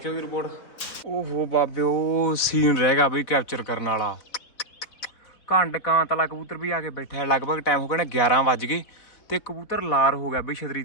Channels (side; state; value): right; late; 3.9 ms